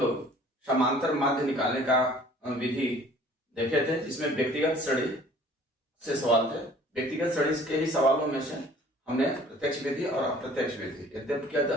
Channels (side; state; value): both; normal; correlation 0.52